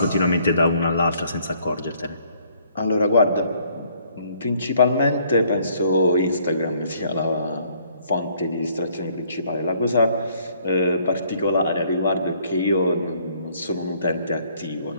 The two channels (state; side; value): inverted; both; correlation -0.63